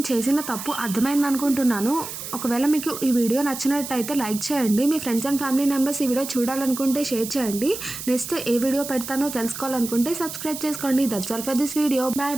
చేసిన తప్పు అర్థమైంది అనుకుంటున్నాను. ఒకవేళ మీకు ఈ వీడియో నచ్చినట్టయితే లైక్ చేయండి. మీ ఫ్రెండ్స్ అండ్ ఫ్యామిలీ మెంబర్స్ ఈ వీడియో చూడాలనుకుంటే షేర్ చేయండి. నెక్స్ట్ ఏ వీడియో పెడతానో తెలుసుకోవాలనుకుంటే సబ్స్క్రైబ్ చేసుకోండి. That's all for this video.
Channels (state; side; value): noise; right; hiss, 9 dB below the sound